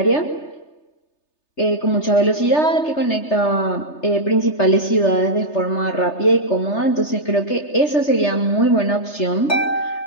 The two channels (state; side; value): late; right; 3.3 ms